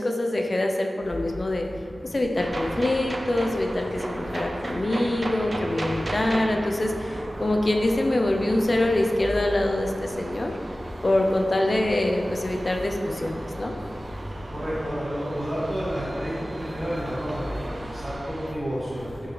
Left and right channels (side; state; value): both; normal; correlation 0.96